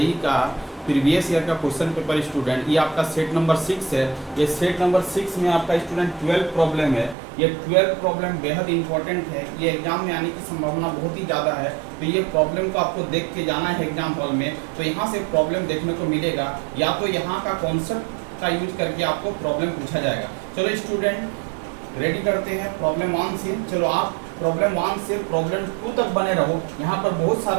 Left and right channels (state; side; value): drops out; left; at 7.2 s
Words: का प्रीवियस ईयर का क्वेश्चन पेपर। स्टूडेंट, ये आपका सेट नंबर 6 है। ये सेट नंबर 6 में आपका स्टूडेंट 12 प्रॉब्लम है। ये 12 प्रॉब्लम बेहद इंपॉर्टेंट है। ये एग्जाम में आने की संभावना बहुत ही ज़्यादा है, तो ये प्रॉब्लम को आपको देख के जाना है एग्जाम हॉल में। तो यहाँ से प्रॉब्लम देखने को मिलेगा, या तो यहाँ का कॉन्सेप्ट का यूज करके आपको प्रॉब्लम पूछा जाएगा। चलो स्टूडेंट, रेडी करते हैं प्रॉब्लम 1 से। चलो आप प्रॉब्लम 1 से प्रॉब्लम 2 तक बने रहो। यहाँ पर बहुत